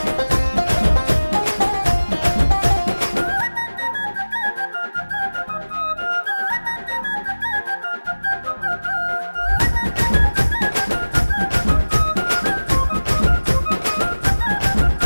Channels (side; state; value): both; inverted; correlation -1.00